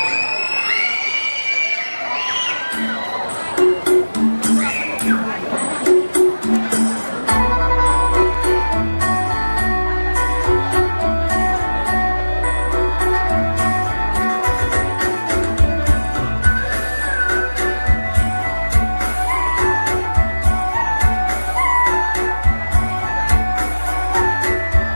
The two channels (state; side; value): inverted; both; correlation -1.00